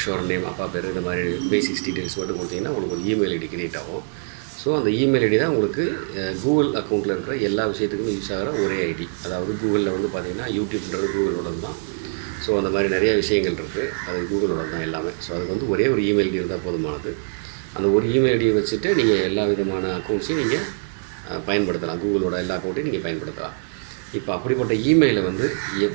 ஷோர் நேம், அப்பா பேர், இந்த மாதிரி பேசிக்ஸ் டீட்டெயில்ஸ் மட்டும் கொடுத்தீங்கன்னா உங்களுக்கு ஒரு இமெயில் ஐடி க்ரியேட் ஆகும். ஸோ அந்த இமெயில் ஐடி தான் உங்களுக்கு கூகுள் அக்கௌண்ட்டில் இருக்கிற எல்லா விஷயத்துக்குமே யூஸ் ஆகிற ஒரே ஐடி. அதாவது கூகுளில் வந்து பார்த்திங்கன்னா யூடியூப்ன்றது கூகுளோட தான். ஸோ அந்த மாதிரி நிறைய விஷயங்கள் இருக்குது, அது கூகுளோட தான் எல்லாமே. ஸோ அதுக்கு வந்து ஒரே ஒரு இமெயில் ஐடி இருந்தால் போதுமானது. அந்த ஒரு இமெயில் ஐடியை வச்சுட்டு நீங்கள் எல்லா விதமான அக்கௌண்ட்ஸையும் நீங்கள் பயன்படுத்தலாம். கூகுளோட எல்லா அக்கௌண்ட்டையும் நீங்கள் பயன்படுத்தலாம். இப்போ அப்படிப்பட்ட இமெயிலை வந்து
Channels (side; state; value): left; silent; digital silence